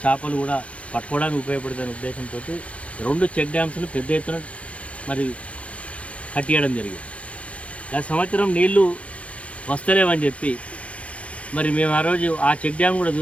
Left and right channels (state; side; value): late; right; 0.063 ms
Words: చేపలు కూడా పట్టుకోవడానికి ఉపయోగపడుతున్న ఉద్దేశంతో 2 చెక్ డ్యామ్స్ను పెద్ద ఎత్తున మరి కట్టియడం జరిగింది. గత సంవత్సరం నీళ్లు వస్తలేవని చెప్పి మరి మేము ఆ రోజు ఆ చెక్ డ్యామ్ కూడా